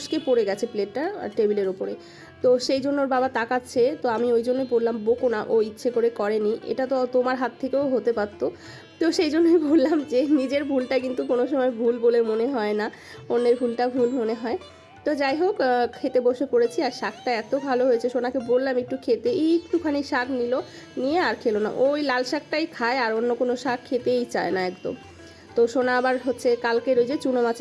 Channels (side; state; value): both; identical; correlation 1.00